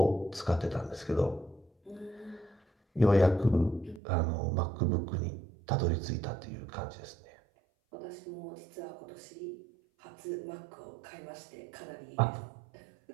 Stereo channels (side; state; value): left; drops out; at 4.0 s